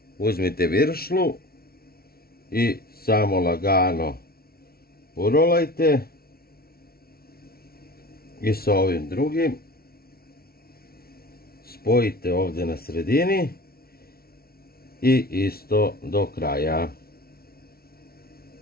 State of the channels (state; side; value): late; right; 0.44 ms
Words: uzmite viršlu i samo lagano urolajte i sa ovim drugim spojite ovdje na sredini i isto do kraja.